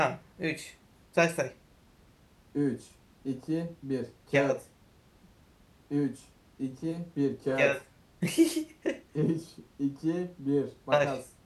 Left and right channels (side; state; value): both; identical; correlation 1.00